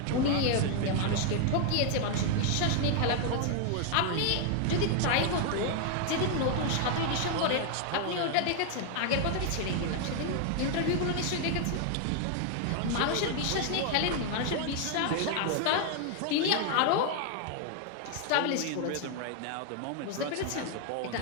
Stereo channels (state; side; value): different; both; correlation 0.00